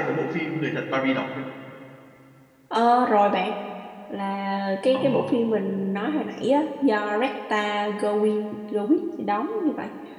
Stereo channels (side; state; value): both; identical; correlation 1.00